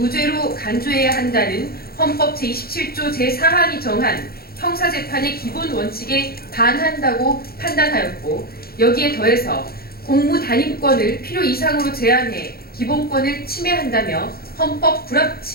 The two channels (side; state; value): right; late; 0.44 ms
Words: 간주해야 한다는 헌법 제27조 제4항이 정한 형사재판의 기본 원칙에 반한다고 판단하였고, 여기에 더해서 공무단임권을 필요 이상으로 제한해 기본권을 침해한다며 헌법